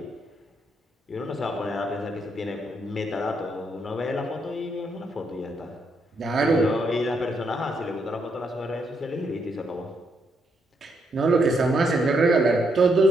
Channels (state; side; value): normal; both; correlation 0.77